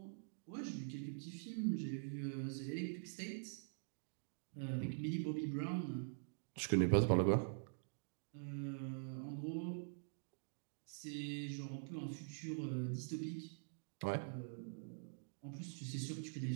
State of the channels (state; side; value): silent; left; digital silence